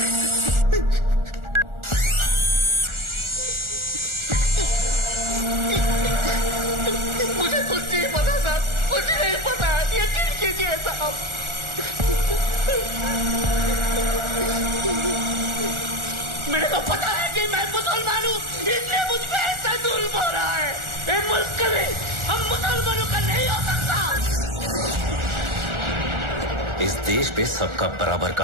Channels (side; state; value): left; late; 1.4 ms